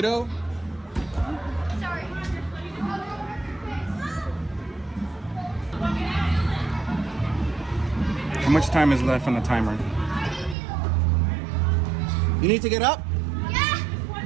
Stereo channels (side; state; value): left; drops out; at 10.6 s